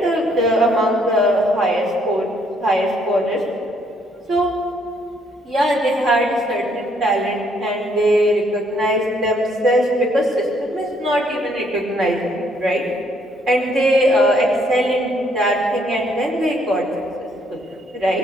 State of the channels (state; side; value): normal; both; correlation 0.68